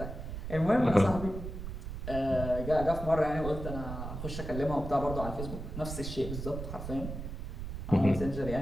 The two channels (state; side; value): noise; right; rumble, 7 dB below the sound